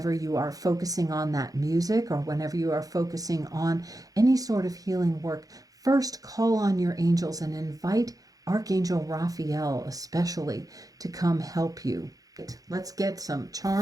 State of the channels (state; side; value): late; left; 0.17 ms